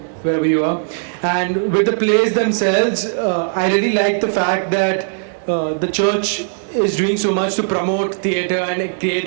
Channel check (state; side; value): silent; left; digital silence